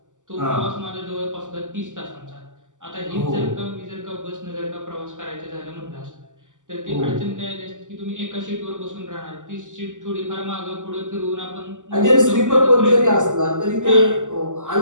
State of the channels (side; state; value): left; late; 0.87 ms